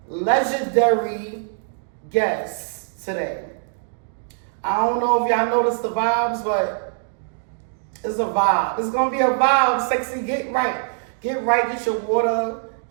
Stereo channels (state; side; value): silent; left; digital silence